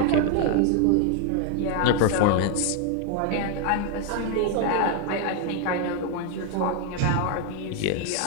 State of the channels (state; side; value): different; both; correlation 0.00